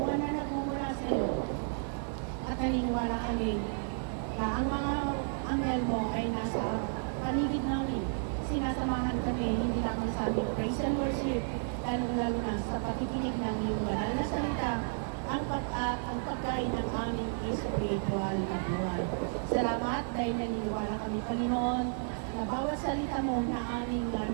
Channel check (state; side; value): silent; left; digital silence